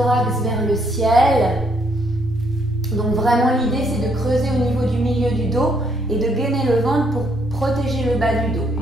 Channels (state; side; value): normal; both; correlation 0.71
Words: vers le ciel. Donc vraiment l'idée c'est de creuser au niveau du milieu du dos et de gainer le ventre pour protéger le bas du dos